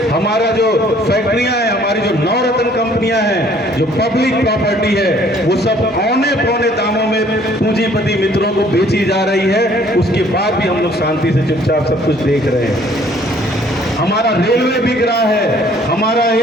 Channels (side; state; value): both; normal; correlation 0.59